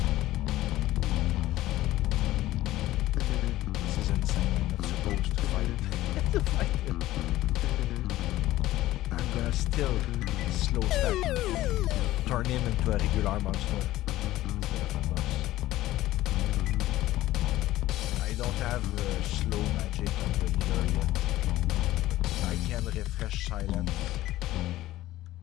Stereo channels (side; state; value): right; quieter; 15.6 dB